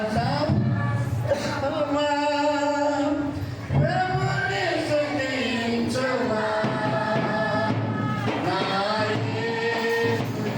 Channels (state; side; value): identical; both; correlation 1.00